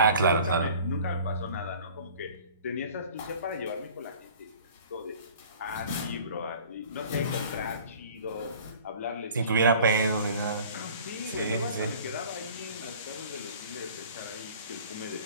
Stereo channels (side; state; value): both; inverted; correlation -0.47